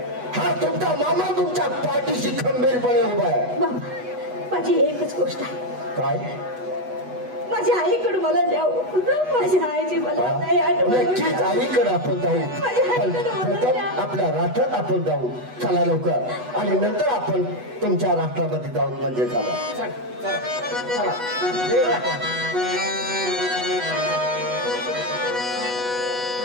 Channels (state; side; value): late; left; 8.1 ms